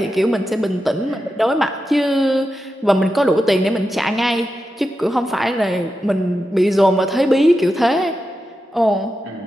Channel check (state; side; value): normal; both; correlation 0.89